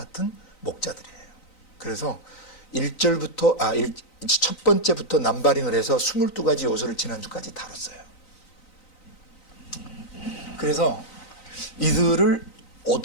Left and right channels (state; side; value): late; right; 3.9 ms